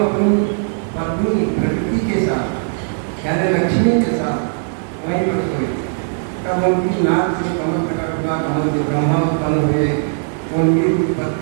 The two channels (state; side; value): silent; left; digital silence